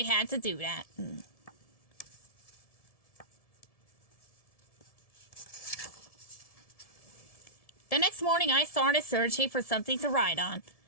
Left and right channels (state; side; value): late; right; 1.7 ms